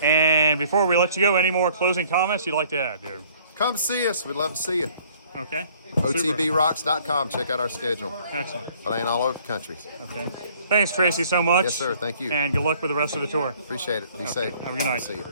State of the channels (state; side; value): inverted; both; correlation -0.58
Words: And before we let you go, any more closing comments you'd like to add, Jared? Come see us. We'd love to see you. Okay. Super. OTBRocks.com. Check out our schedule. Excellent. Playing all over the country. Okay. Thanks, Tracy, so much. Yes, sir. Thank you. And good luck with the rest of the tour. Appreciate it. Be Okay. safe. Have a good night. See